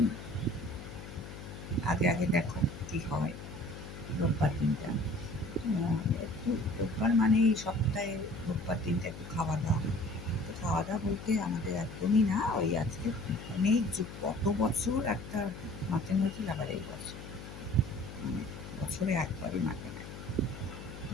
আগে দেখো কি হয় রোববার দিনটা। একটু রোববার মানেই সপ্তাহে রোববার দিনটা একটু খাওয়া দাওয়া। তো খাওয়া দাওয়া বলতে আমাদের একদমই না, ওই আজকে অনেক যুগ কত বছর একটা মাটন হয়েছিল, আবার এই বছর মানে বছরে একবারই মাটন হয়।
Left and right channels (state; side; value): noise; left; hum, 12 dB below the sound